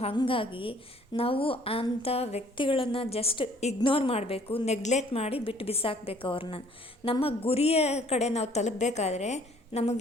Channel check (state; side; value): normal; both; correlation 0.58